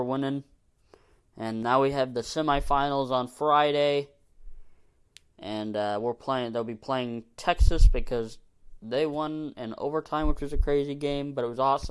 winning. And now we have the semifinals on Friday. And they'll be playing Texas because they won in overtime, which was a crazy game, but it was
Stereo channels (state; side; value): identical; both; correlation 1.00